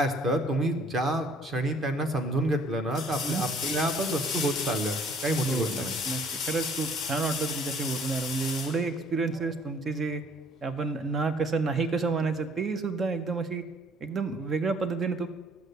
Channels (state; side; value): normal; both; correlation 0.58